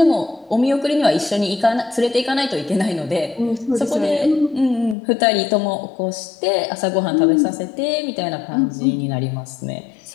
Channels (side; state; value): right; drops out; at 5.0 s